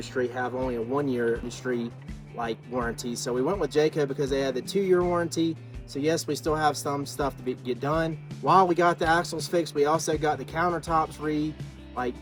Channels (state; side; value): identical; both; correlation 1.00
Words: have only a 1-year industry like warranty. So we went with Jayco because they had the 2-year warranty. So yes, we still have some stuff to get done. While we got the axles fixed, we also got the countertops